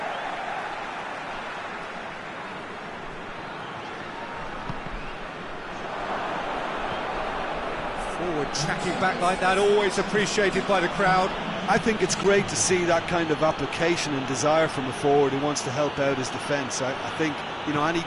Forward tracking back like that, always appreciated by the crowd. I think it's great to see that kind of application and desire from a forward who wants to help out his defence. I think, you know, any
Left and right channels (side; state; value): both; identical; correlation 1.00